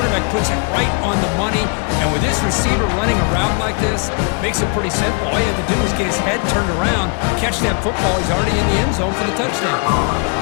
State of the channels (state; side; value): quieter; right; 37.9 dB